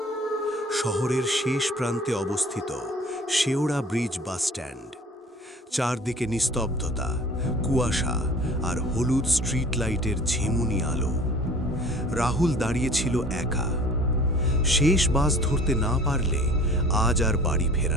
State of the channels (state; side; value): normal; both; correlation 0.47